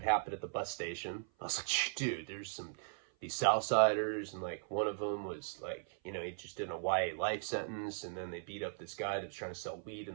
happened at the bus station. I was like, dude, there's these Southsiders, and like one of them was like, you know, he just did a YA life sentence, and then they beat up this guy that was trying to sell weed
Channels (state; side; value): silent; left; 52 dB below the other